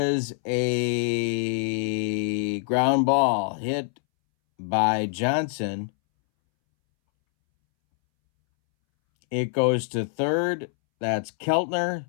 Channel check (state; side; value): silent; right; 62 dB below the other